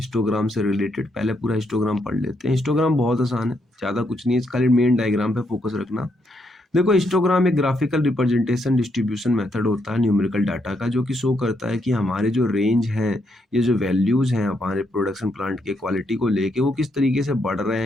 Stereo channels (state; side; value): normal; both; correlation 0.77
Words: से रिलेटेड। पहले पूरा हिस्टोग्राम पढ़ लेते हैं। हिस्टोग्राम बहुत आसान है, ज्यादा कुछ नहीं है, खाली मेन डायग्राम पे फोकस रखना। देखो हिस्टोग्राम एक ग्राफिकल रिप्रेजेंटेशन डिस्ट्रीब्यूशन मेथड होता है न्यूमेरिकल डाटा का, जो कि शो करता है कि हमारे जो रेंज हैं, ये जो वैल्यूज हैं हमारे प्रोडक्शन प्लांट के क्वालिटी को लेके, वो किस तरीके से बढ़ रहे